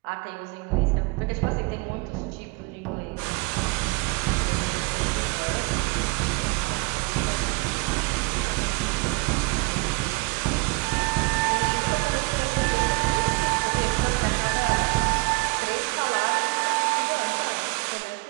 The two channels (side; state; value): left; quieter; 25.2 dB